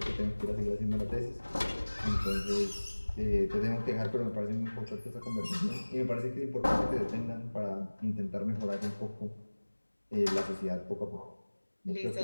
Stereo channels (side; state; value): both; inverted; correlation -1.00